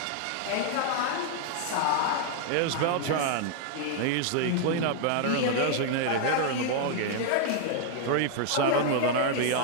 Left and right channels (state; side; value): different; both; correlation 0.00